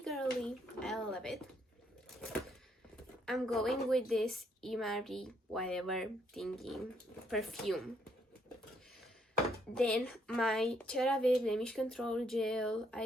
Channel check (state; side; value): normal; both; correlation 0.72